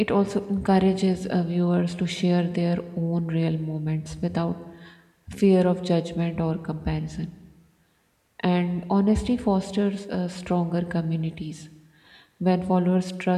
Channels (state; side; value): identical; both; correlation 1.00